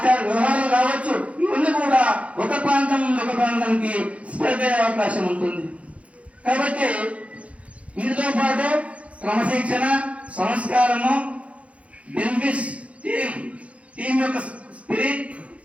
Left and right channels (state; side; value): late; left; 0.064 ms